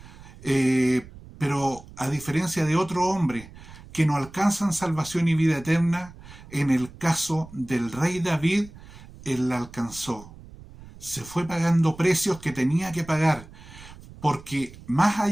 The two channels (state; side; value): noise; right; rumble, 19 dB below the sound